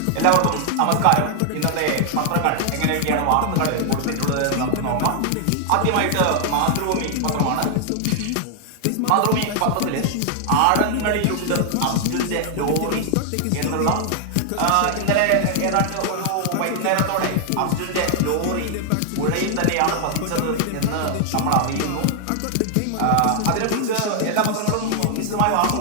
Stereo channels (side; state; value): both; different; correlation 0.00